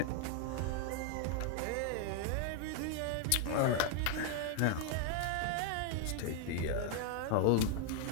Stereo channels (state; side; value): different; both; correlation 0.00